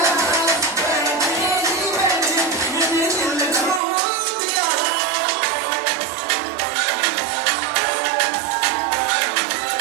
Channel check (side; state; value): left; drops out; at 3.8 s